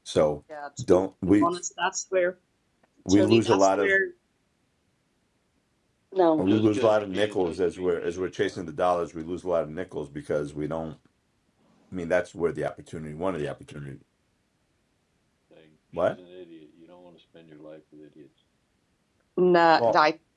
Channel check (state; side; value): identical; both; correlation 1.00